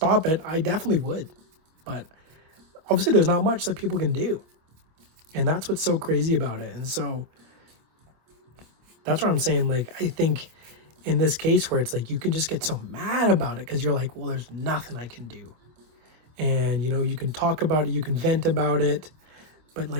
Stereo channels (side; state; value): left; late; 26 ms